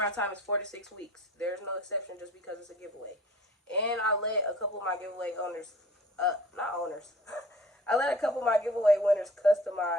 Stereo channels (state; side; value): normal; both; correlation 0.47